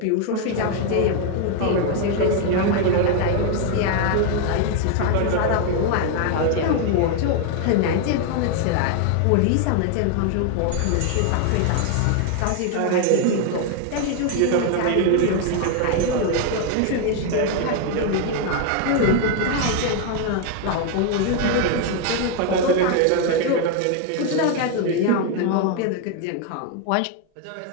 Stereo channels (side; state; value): both; different; correlation 0.01